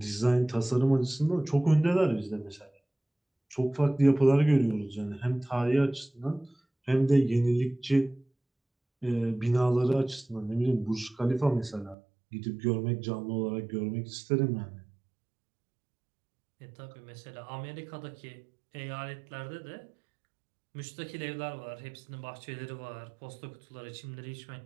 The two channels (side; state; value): left; drops out; at 12.0 s